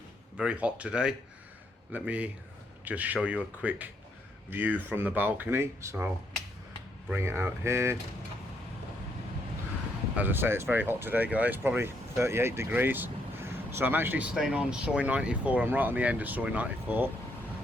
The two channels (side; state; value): both; normal; correlation 0.74